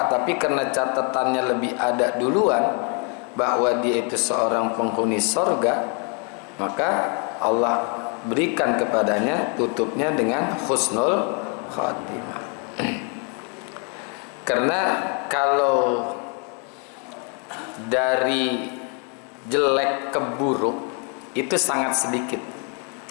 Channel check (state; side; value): quieter; right; 37.4 dB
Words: tapi karena catatannya lebih ada duluan bahwa dia itu seorang penghuni surga, maka Allah berikan kepadanya tutupnya dengan husnul khatimah. Karena kalau dari jelek ke buruk itu sangat